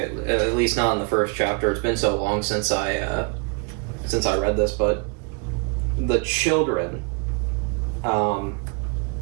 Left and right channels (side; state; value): left; quieter; 34.5 dB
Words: least not in the first chapter. It's been so long since I read this, but the children